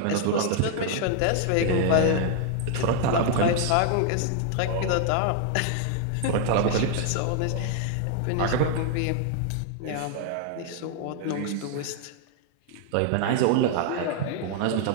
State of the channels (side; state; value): both; different; correlation 0.00